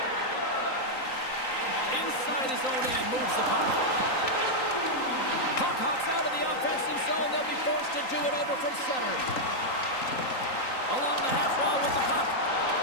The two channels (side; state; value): right; late; 3.9 ms